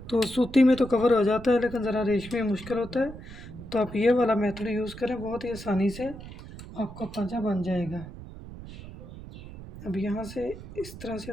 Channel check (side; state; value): right; noise; rumble, 14 dB below the sound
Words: तो सूती में तो कवर हो जाता है, लेकिन ज़रा रेशमी में मुश्किल होता है। तो आप ये वाला मेथड यूज़ करें, बहुत ही आसानी से आपका पाँचा बन जाएगा। अब यहाँ से इस तरह से